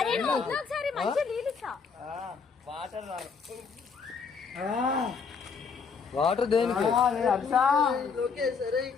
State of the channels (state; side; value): quieter; right; 5.6 dB